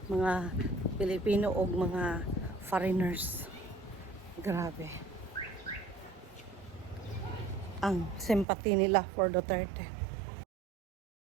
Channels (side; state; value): left; drops out; at 8.5 s